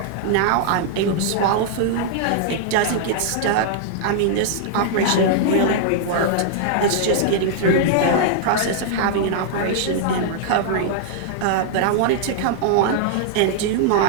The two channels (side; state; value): both; different; correlation -0.01